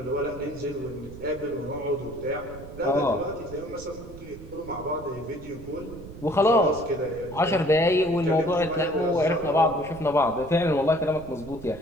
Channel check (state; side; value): noise; right; rumble, 15 dB below the sound